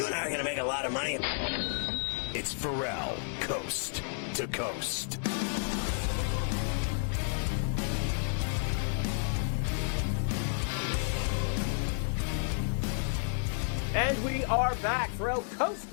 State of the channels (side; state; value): right; silent; digital silence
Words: and I are going to make a lot of money. It's Ferrall. Coast to coast. And we are back, Ferrall, Coast